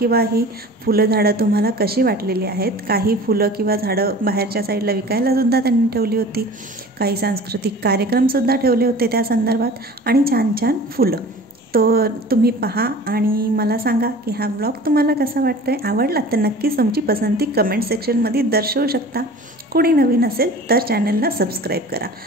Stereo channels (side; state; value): both; normal; correlation 0.41